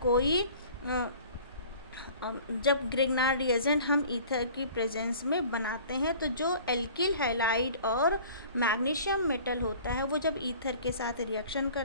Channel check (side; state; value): both; inverted; correlation -0.47